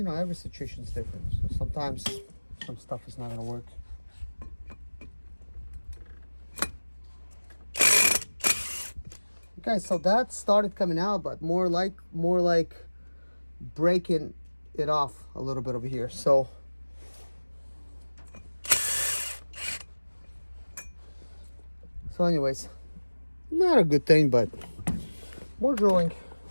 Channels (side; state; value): both; inverted; correlation -1.00